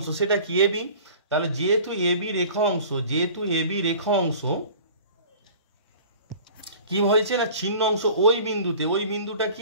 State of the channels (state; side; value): inverted; both; correlation -0.44